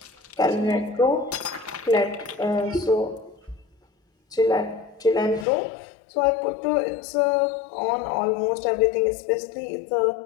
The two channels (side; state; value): right; drops out; at 5.5 s